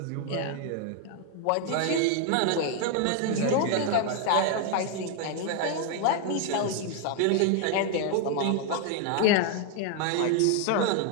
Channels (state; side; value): different; both; correlation 0.00